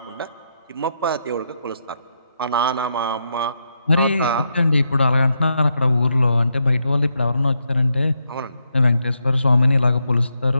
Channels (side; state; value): both; inverted; correlation -0.81